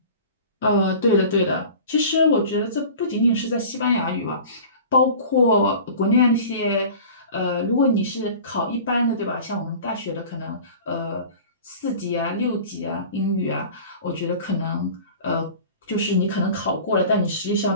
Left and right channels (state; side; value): inverted; both; correlation -0.40